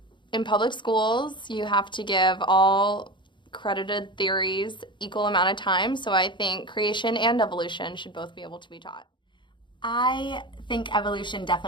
in public schools, you have to give all credited theories equal amount of time, so I think creation and evolution should both be able to be taught. I think evolution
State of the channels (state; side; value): late; right; 0.23 ms